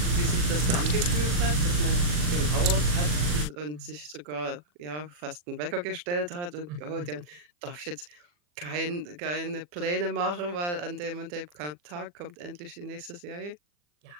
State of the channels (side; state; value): left; late; 40 ms